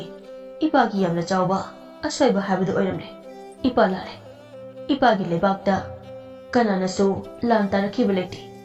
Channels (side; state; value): both; identical; correlation 1.00